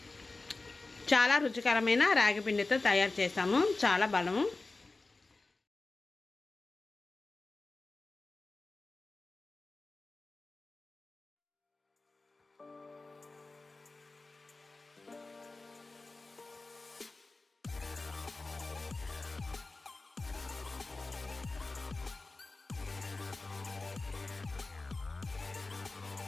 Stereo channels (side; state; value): right; quieter; 3.4 dB